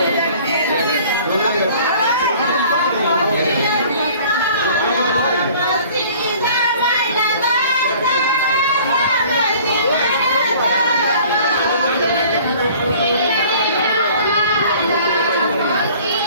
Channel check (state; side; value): inverted; both; correlation -0.50